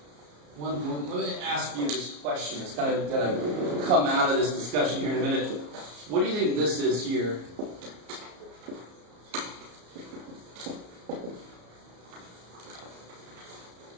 one. Let me ask you this question. It's kind of going to come out of this discussion here in a minute. What do you think this is here?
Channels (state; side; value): late; left; 34 ms